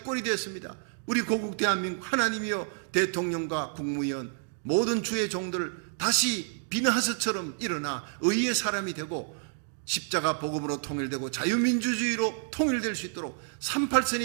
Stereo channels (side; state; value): left; silent; digital silence